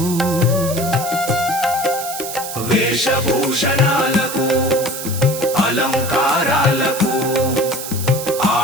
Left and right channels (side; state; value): right; noise; hiss, 8 dB below the sound